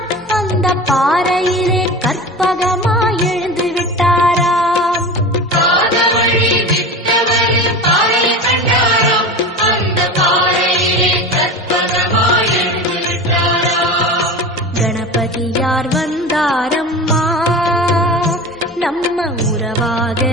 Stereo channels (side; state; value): both; normal; correlation 0.30